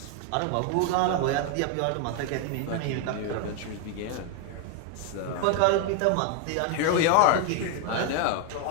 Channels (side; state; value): both; different; correlation 0.01